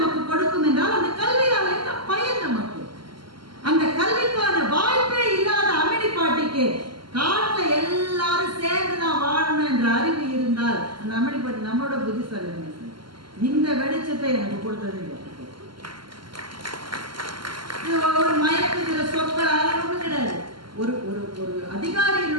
கொடுக்கும் என்றால், அந்த கல்வியால் என்ன பயன் நமக்கு? அந்த கல்விக்கான வாய்ப்பே இல்லாத அம்மினி பாட்டிக்கு காட்டுல எல்லாரும் சேர்ந்து நான் வாழணும் என்ற அறிவு இருந்தால், அந்த அம்மினி பாட்டி நம்மளோட புத்திசாலி. இந்த வெளிச்சத்தை எனக்கு கொடுத்தது ஒரு மயக்குகிற சொற்கள் ஒன்றும் கிடையாது. ஒரு ஒரு ஒரு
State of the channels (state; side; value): late; left; 0.72 ms